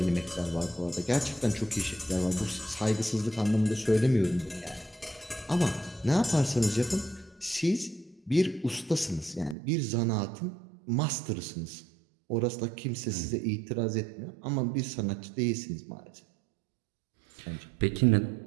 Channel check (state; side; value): drops out; left; at 9.6 s